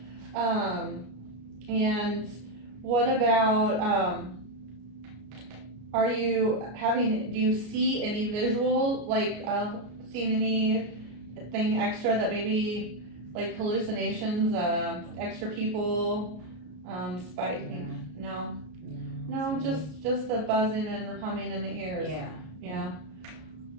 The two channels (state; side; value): late; left; 33 ms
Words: And what about do you see any visual, like seeing anything extra that maybe like hallucinations, extra people, No, just the buzzing and humming in the ears. Yeah.